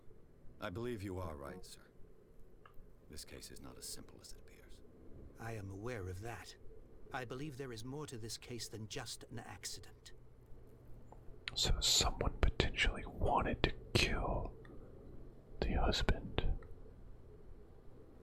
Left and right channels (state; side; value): identical; both; correlation 1.00